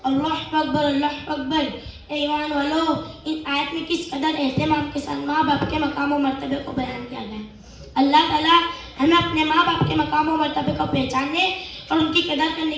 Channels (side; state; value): both; identical; correlation 1.00